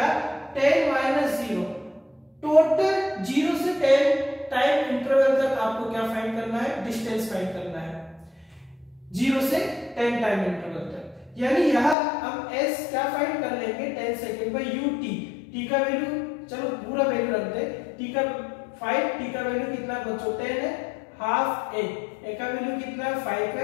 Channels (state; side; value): drops out; right; at 12.0 s